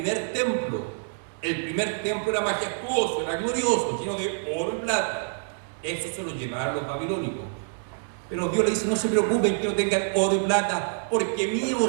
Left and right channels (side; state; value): left; silent; 61 dB below the other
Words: templo. El primer templo era majestuoso, era glorioso, lleno de oro y plata. Eso se lo llevaron los babilónicos. Pero Dios le dice, no se preocupen que no tengan oro y plata, porque mío